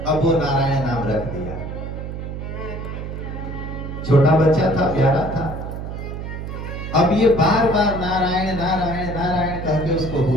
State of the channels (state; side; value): noise; right; hum, 7 dB below the sound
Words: अब वो नारायण नाम रख दिया। छोटा बच्चा था, प्यारा था। अब ये बार बार नारायण नारायण नारायण कह के उसको